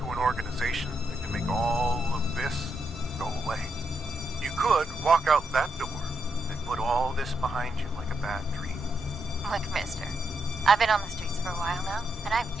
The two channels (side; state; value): both; normal; correlation 0.81